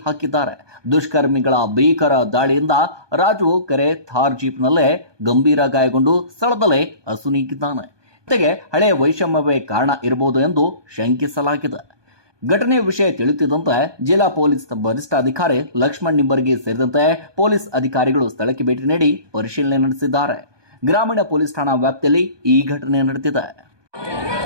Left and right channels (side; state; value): left; late; 1.2 ms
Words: ಹಾಕಿದ್ದಾರೆ. ದುಷ್ಕರ್ಮಿಗಳ ಭೀಕರ ದಾಳಿಯಿಂದ ರಾಜು ಕೆರೆ ಥಾರ್ ಜೀಪ್ನಲ್ಲೇ ಗಂಭೀರ ಗಾಯಗೊಂಡು ಸ್ಥಳದಲ್ಲೇ ಅಸುನೀಗಿದ್ದಾನೆ. ಜೊತೆಗೆ ಹಳೆಯ ವೈಷಮ್ಯವೇ ಕಾರಣ ಇರಬಹುದು ಎಂದು ಶಂಕಿಸಲಾಗಿದೆ. ಘಟನೆಯ ವಿಷಯ ತಿಳಿಯುತ್ತಿದ್ದಂತೆ ಜಿಲ್ಲಾ ಪೊಲೀಸ್ ವರಿಷ್ಠಾಧಿಕಾರಿ ಲಕ್ಷ್ಮಣ್ ನಿಂಬರ್ಗಿ ಸೇರಿದಂತೆ ಪೊಲೀಸ್ ಅಧಿಕಾರಿಗಳು ಸ್ಥಳಕ್ಕೆ ಭೇಟಿ ನೀಡಿ ಪರಿಶೀಲನೆ ನಡೆಸಿದ್ದಾರೆ. ಗ್ರಾಮೀಣ ಪೊಲೀಸ್ ಠಾಣಾ ವ್ಯಾಪ್ತಿಯಲ್ಲಿ ಈ ಘಟನೆ ನಡೆದಿದೆ.